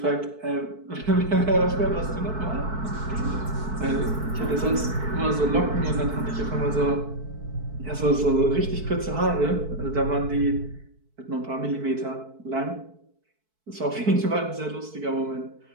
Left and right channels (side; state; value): left; late; 4.6 ms